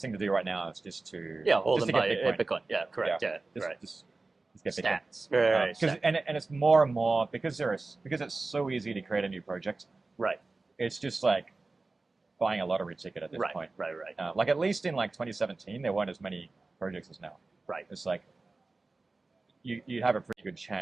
thing to do right now is just to Hold just them to by get Bitcoin. Bitcoin. Yeah, correct. Yeah, right. Just get Bitcoin. Stats. Right. And it's more and more because it's so easy to create a new project. Right. It's just like buying a lottery ticket at this Right. point. Right. Like at least in like 2017, there weren't as many projects as now. Right. It's like you have a pretty good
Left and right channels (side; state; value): left; quieter; 3.5 dB